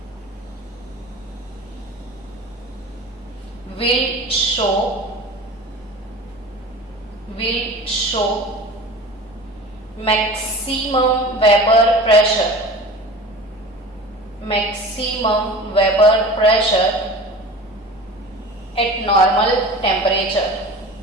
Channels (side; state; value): both; normal; correlation 0.37